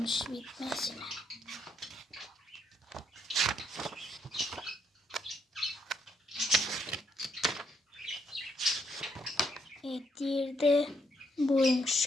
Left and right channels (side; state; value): both; normal; correlation 0.74